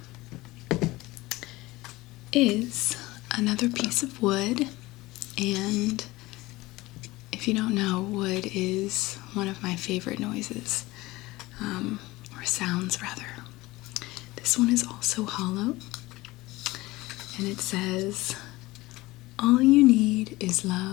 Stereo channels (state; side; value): quieter; right; 19.9 dB